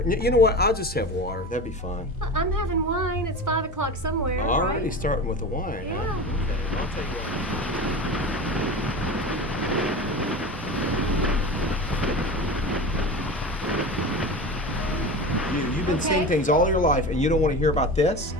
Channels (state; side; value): normal; both; correlation 0.30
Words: You know what? I'll just have water. That'd be fine. I'm having wine. It's 5 o'clock somewhere. Already right? starting with the wine. Yeah. Huh? Okay, I'll take that. You've been seeing things all your life, and you don't want to hear about this?